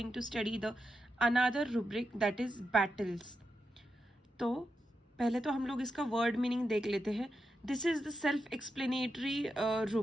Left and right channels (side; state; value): both; normal; correlation 0.87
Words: to study the another rubric that is battles. तो पहले तो हम लोग इसका word meaning देख लेते हैं. This is the self explanatory